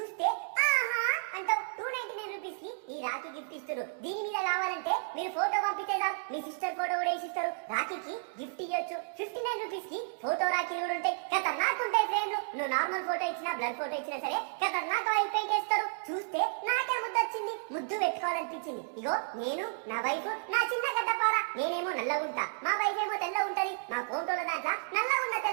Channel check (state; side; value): silent; left; digital silence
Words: ఆహా అంటావు. 299 రూపీస్ కి ఈ రాఖీ గిఫ్ట్ ఇస్తారు. దీని మీద కావాలంటే మీరు ఫోటో పంపితే చాలు, మీ సిస్టర్ ఫోటో కూడా వేసిస్తారు. రాఖీకి గిఫ్ట్ ఇవ్వచ్చు. 59 రూపీస్ కి ఫోటో రాఖీలు కూడా ఉంటాయి. ఖతర్నాక్ ఉంటాయి ఫ్రేమ్లు. నువ్వు నార్మల్ ఫోటో ఇచ్చినా బ్లర్ ఫోటో ఇచ్చినా సరే ఖతర్నాక్ ఆయిల్ పెయింట్ వేస్తారు. చూస్తే నాకే ముద్దు వచ్చింది, ముద్దు పెట్టుకోవాలనిపించింది. ఇగో నేను, నా వైఫ్, నా చిన్న గడ్డపార. నేనేమో నల్లగుంటా, మా వైఫ్ ఏమో తెల్ల ఉంటది. మా ఫోటోల దాంట్లో నల్లగున్న